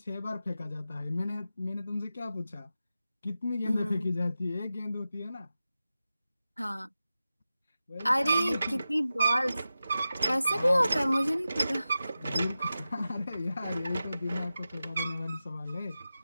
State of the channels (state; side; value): inverted; both; correlation -0.93